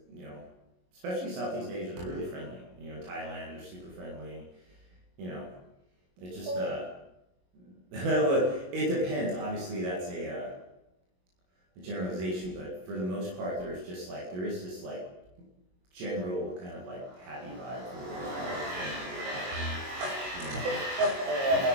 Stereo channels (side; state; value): left; late; 22 ms